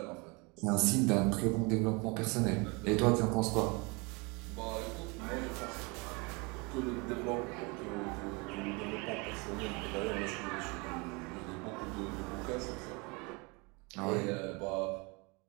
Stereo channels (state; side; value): quieter; left; 28.5 dB